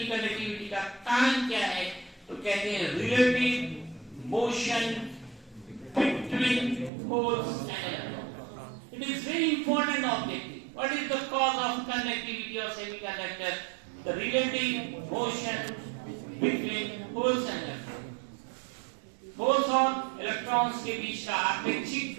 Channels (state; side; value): drops out; left; at 6.9 s